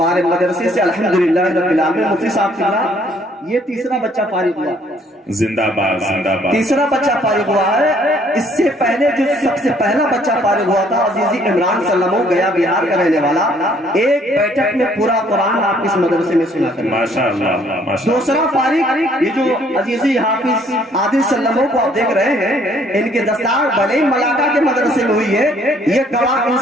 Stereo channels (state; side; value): normal; both; correlation 0.63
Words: مدرسے سے الحمدللہ رب العالمین, مفتی صاحب کی یہ تیسرا بچہ فارغ ہوا, زندہ باد زندہ باد, تیسرا بچہ فارغ ہوا ہے. اس سے پہلے جو سب سے پہلا بچہ فارغ ہوا تھا عزیزی عمران سلمو, گیا بہار کا رہنے والا, ایک بیٹھک میں پورا قرآن آپ اس مدرسے میں سنا کر. ماشاءاللہ. دوسرا فارغ یہ جو عزیزی حافظ عادل سلمو کو آپ دیکھ رہے ہیں, ان کے دستار بھلے ملاقہ کے مدرسے میں ہوئی ہے, یہ گواہ ان